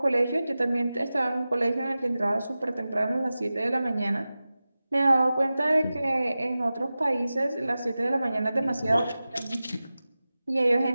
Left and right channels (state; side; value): inverted; both; correlation -0.95